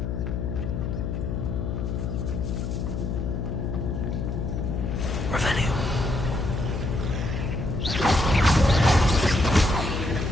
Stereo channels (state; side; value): noise; left; hum, 3 dB below the sound